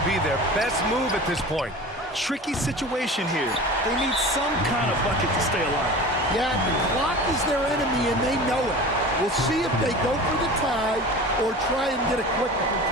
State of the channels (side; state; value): both; normal; correlation 0.36